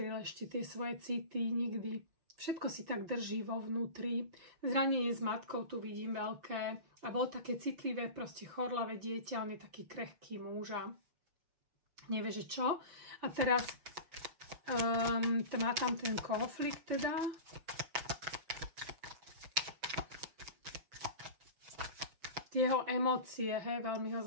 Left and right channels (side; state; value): left; late; 6.1 ms